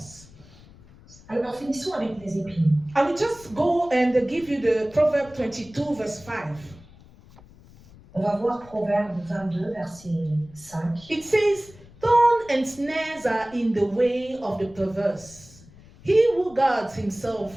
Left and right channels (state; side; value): noise; left; rumble, 23 dB below the sound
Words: Alors, finissons avec les épines. I will just go and give you the Proverb 22, verse 5. On va voir Proverbe 22, verset 5. It says, "Thorn and snares are in the way of the perverse. He who guards